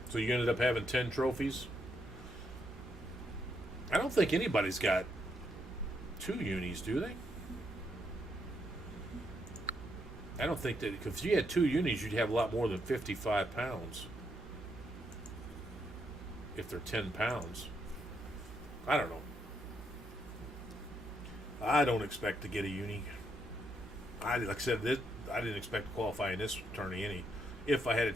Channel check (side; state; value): both; normal; correlation 0.77